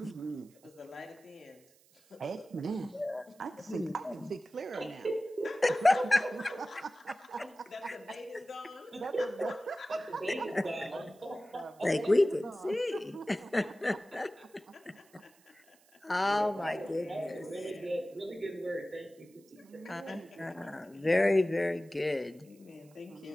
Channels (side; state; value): right; noise; hiss, 29 dB below the sound